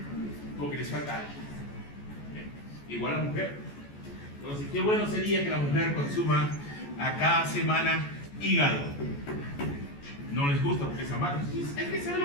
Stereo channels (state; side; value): late; right; 14 ms